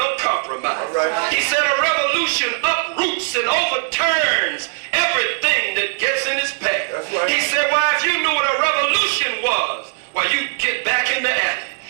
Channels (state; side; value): silent; left; digital silence